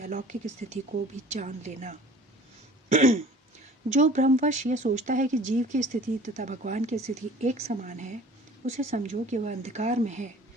स्थिति को भी जान लेना। जो भ्रमवश यह सोचता है कि जीव की स्थिति तथा भगवान की स्थिति एक समान है, उसे समझो कि वह अंधकार में है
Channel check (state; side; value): normal; both; correlation 0.46